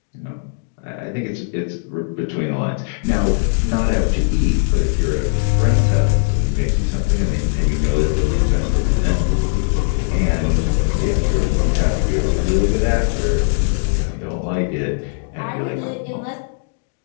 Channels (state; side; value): silent; right; digital silence